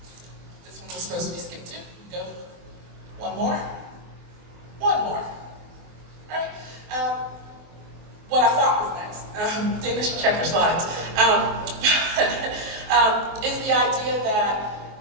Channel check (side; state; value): left; late; 24 ms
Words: this one was supposed to be skipped too. Go one more. One more. Right? What I thought was next. Dana should check her slides. Is the idea that